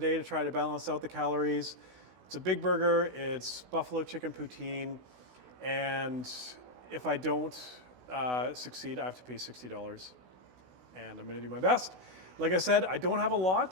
to try to balance out the calories. It's a big burger. It's buffalo chicken poutine, and if I don't succeed, I have to pay $60, and I'm gonna do my best. Like I said, I don't have a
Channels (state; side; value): late; left; 16 ms